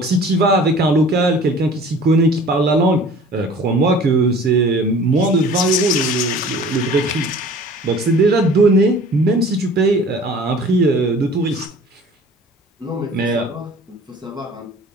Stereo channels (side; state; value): both; normal; correlation 0.46